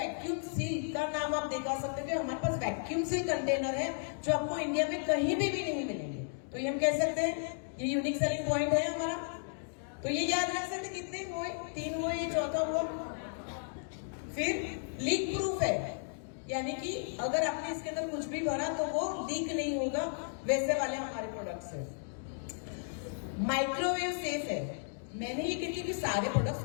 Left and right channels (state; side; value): silent; right; digital silence